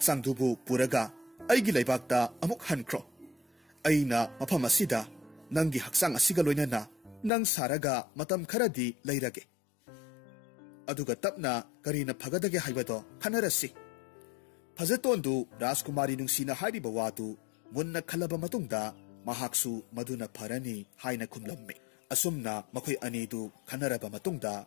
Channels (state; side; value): drops out; right; at 7.3 s